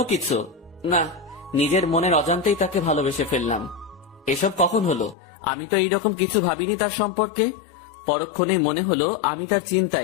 কিছু। না, নিজের মনের অজান্তেই তাকে ভালোবেসে ফেললাম। এসব কখন হলো? আমি তো এইরকম কিছু ভাবিনি তার সম্পর্কে। পরক্ষণে মনে হলো আমি তার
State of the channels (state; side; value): drops out; right; at 5.2 s